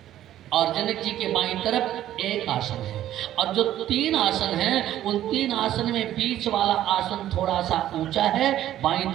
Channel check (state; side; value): quieter; left; 12.5 dB